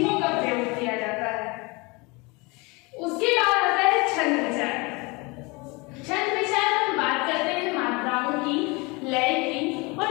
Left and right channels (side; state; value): right; quieter; 26.8 dB